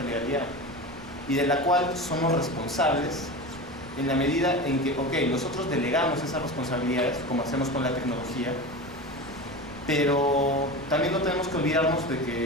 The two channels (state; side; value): noise; right; rumble, 22 dB below the sound